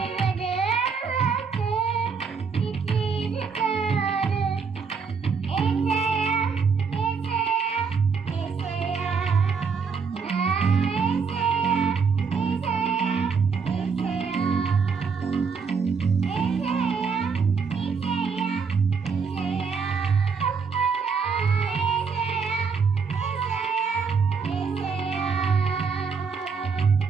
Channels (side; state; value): left; quieter; 5.5 dB